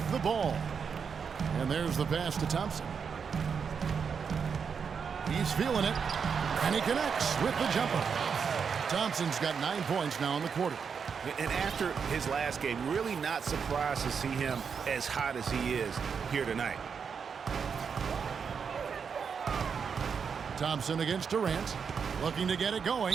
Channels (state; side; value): quieter; left; 6.3 dB